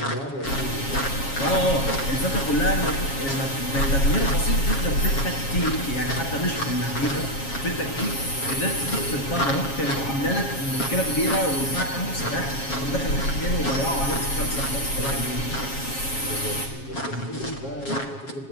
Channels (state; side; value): late; right; 7.3 ms